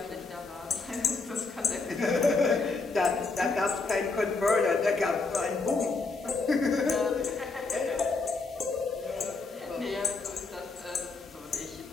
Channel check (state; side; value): quieter; right; 3.9 dB